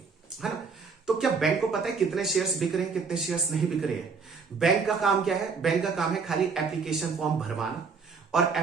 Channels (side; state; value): left; quieter; 5.1 dB